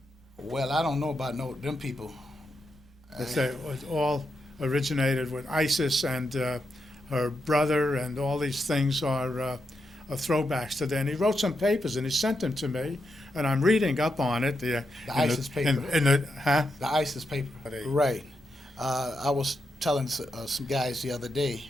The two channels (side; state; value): both; normal; correlation 0.84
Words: Well, I don't know about them people. It all originated with ISIS and her brother, and all these things are throwbacks to that. And he wrote some papers and he sent them to me, and I'm reading up on it. The ISIS paper. The ISIS paper. Right. I was telling some guys the other day,